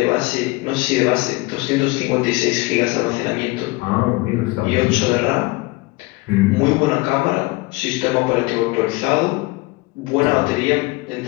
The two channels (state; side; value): quieter; right; 23.6 dB